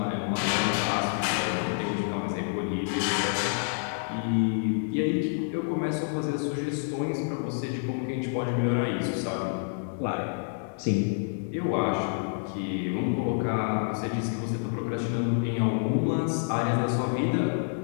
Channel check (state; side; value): silent; right; digital silence